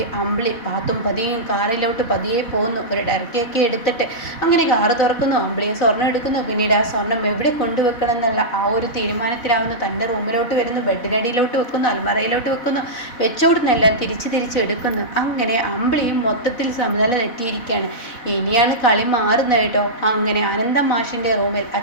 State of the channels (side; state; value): right; late; 4.1 ms